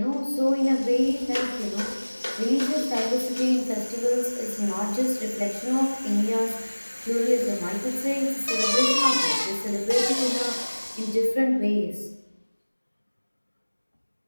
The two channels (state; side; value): inverted; both; correlation -1.00